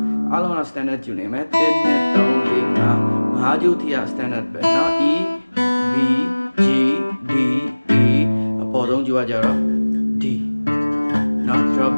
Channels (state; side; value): inverted; both; correlation -1.00